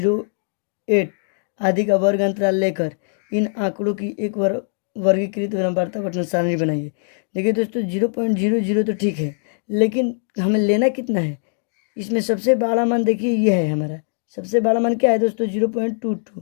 आदि का वर्ग अंतराल लेकर इन आंकड़ों की एक वर्गीकृत वार्ता पठन सारणी बनाइए। देखिए दोस्तों, 0.00 तो ठीक है, लेकिन हमें लेना कितना है? इसमें सबसे बड़ा मान देखिए ये है हमारा। सबसे बड़ा मान क्या है दोस्तों?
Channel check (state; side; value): silent; right; digital silence